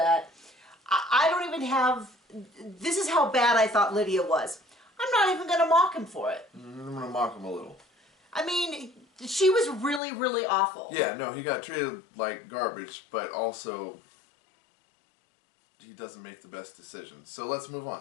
I don't even have... This is how bad I thought Lydia was. I'm not even going to mock him for it. I'm going to mock him a little. I mean... She was really, really awful. Yeah, no, he got treated like garbage, but also he doesn't make the best decisions. So let's move on.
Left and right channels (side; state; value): right; drops out; at 10.0 s